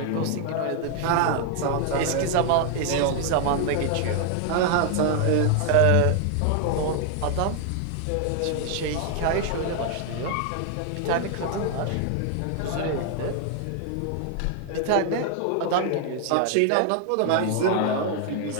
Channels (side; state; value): both; different; correlation 0.00